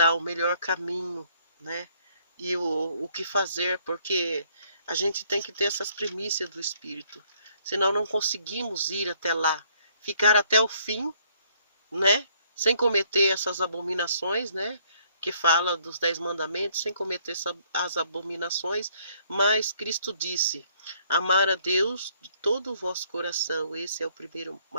o melhor caminho, né? E o que fazer, porque a gente tem que ter essas primícias do Espírito, senão não conseguimos ir até lá, ficar até o fim, né? Sem cometer essas abominações, né? Que fala dos 10 mandamentos, sem cometer as abominações, mas Cristo disse: amar a Deus de todo o vosso coração, esse é o primeiro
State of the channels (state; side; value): inverted; both; correlation -0.65